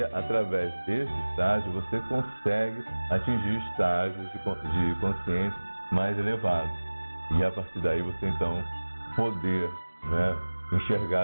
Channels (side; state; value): both; inverted; correlation -1.00